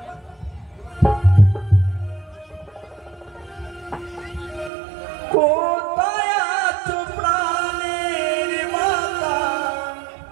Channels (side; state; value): left; drops out; at 4.7 s